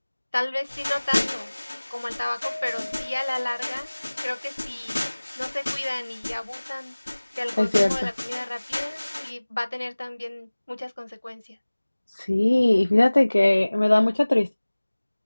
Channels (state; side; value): inverted; both; correlation -1.00